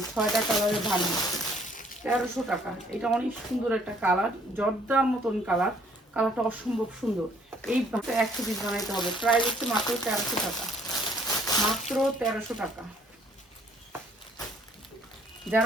6টা কালারের ভান্ডিল, 1300 টাকা। এটা অনেক সুন্দর একটা কালার, জর্দার মতন কালার। কালারটা অসম্ভব সুন্দর। এই 100 পিস বানাইতে হবে। প্রাইস হচ্ছে মাত্র 1300 টাকা, মাত্র 1300 টাকা।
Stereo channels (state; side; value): normal; both; correlation 0.62